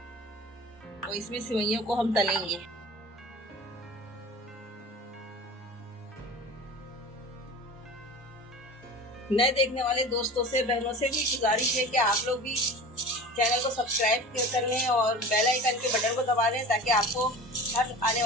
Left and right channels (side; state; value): both; normal; correlation 0.37